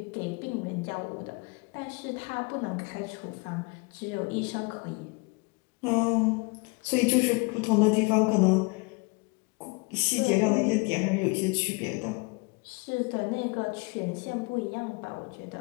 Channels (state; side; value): quieter; right; 28.7 dB